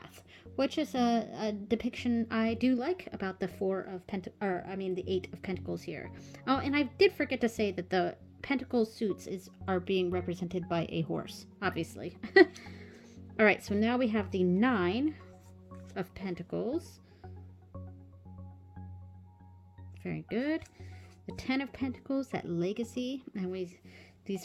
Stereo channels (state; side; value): identical; both; correlation 1.00